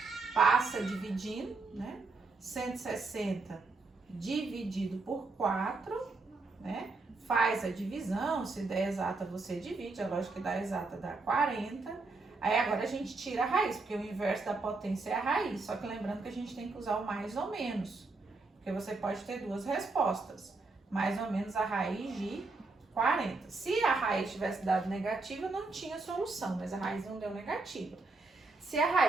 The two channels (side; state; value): left; quieter; 3.7 dB